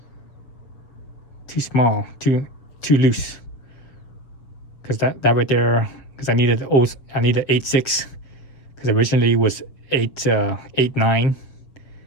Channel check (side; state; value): right; late; 7.4 ms